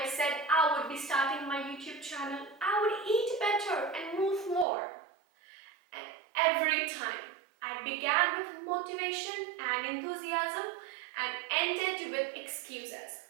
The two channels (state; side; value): drops out; left; at 4.7 s